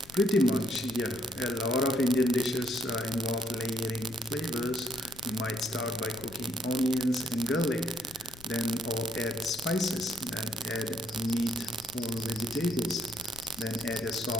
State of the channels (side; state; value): left; noise; rumble, 21 dB below the sound